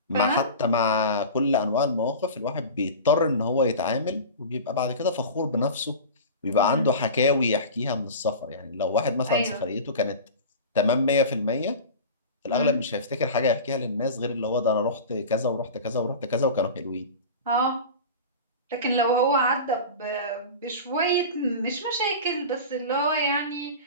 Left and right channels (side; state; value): both; inverted; correlation -0.32